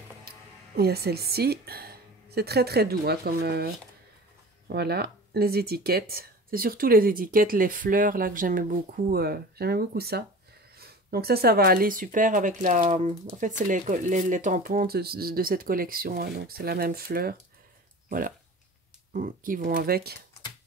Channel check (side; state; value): both; normal; correlation 0.37